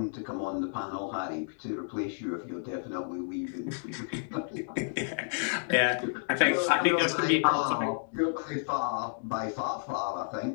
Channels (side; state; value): right; silent; digital silence